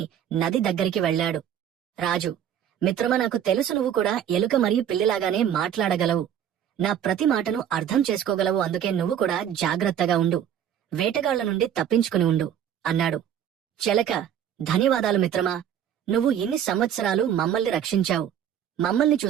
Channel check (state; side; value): quieter; left; 9.6 dB